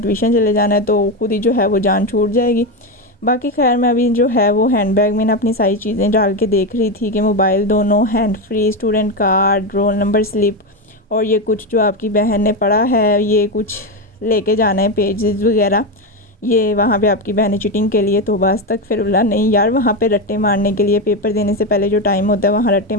चले जाना है, तो खुद ही जो है वो जान छूट जाएगी। बाकी खैर मैं अभी जो है वो हैंड बैग में ना अपनी सारी चीज़ें डाल के देख रही थी कि मोबाइल दोनों, hand free, student card, roll number slip और ये कुछ जो आपकी बहन ने पढ़ा है ये कुछ लेके जाना है पेजेस वगैरह। ये वहाँ पे आपकी बहन चीटिंग के लिए तो बस तक फिर बोला नहीं यार वहाँ पे रट्टे मारने के लिए पेपर देने से पहले जो टाइम होता है वहाँ रट्टे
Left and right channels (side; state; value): both; normal; correlation 0.12